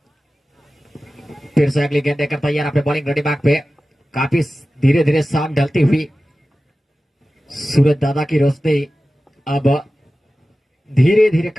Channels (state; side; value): normal; both; correlation 0.95